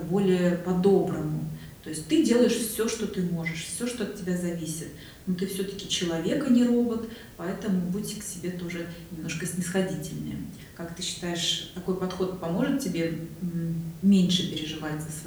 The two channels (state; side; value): identical; both; correlation 1.00